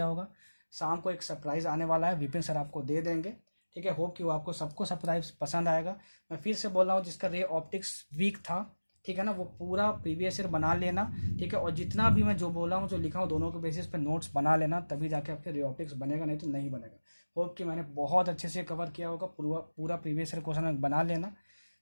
होगा। शाम को एक सरप्राइज आने वाला है, विपिन सर आपको दे देंगे। ठीक है, होप कि वो आपको सबको सरप्राइज पसंद आएगा। मैं फिर से बोल रहा हूँ, जिसका रे ऑप्टिक्स वीक था, ठीक है ना, वो पूरा प्रीवियस ईयर बना लेना। ठीक है, और जितना भी मैं जो बोला हूँ, जो लिखा हूँ, दोनों के बेसिस पे नोट्स बना लेना, तभी जाके आपके रे ऑप्टिक्स बनेगा, नहीं तो नहीं बनेगा। होप कि मैंने बहुत अच्छे से कवर किया होगा, पूरा प्रीवियस ईयर क्वेश्चन बना लेना।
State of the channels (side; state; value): both; inverted; correlation -1.00